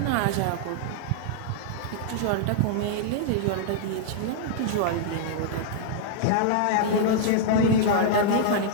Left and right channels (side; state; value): both; different; correlation -0.01